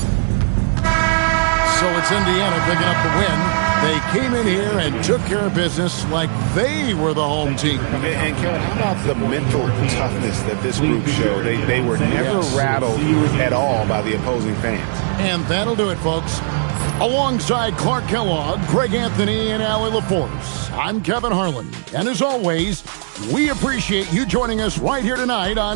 So it's Indiana picking up the win. They came in here and took care of business like they were the home team. And Kevin, how about the mental toughness that this group showed? They were never rattled at all by the opposing fans. And that'll do it, folks. Alongside Clark Kellogg, Greg Anthony, and Allie LaForce, I'm Kevin Harlan. And as always, we appreciate you joining us right here tonight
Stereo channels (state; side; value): silent; left; digital silence